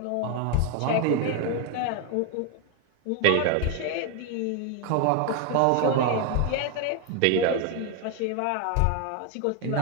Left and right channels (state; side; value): different; both; correlation 0.01